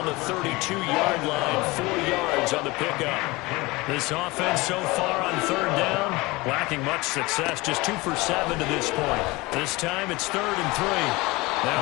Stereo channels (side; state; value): right; quieter; 22.5 dB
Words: the 32-yard line. 4 yards on the pickup. This offense so far on 3rd down, lacking much success. Just 2 for 7 to this point. This time it's 3rd and 3.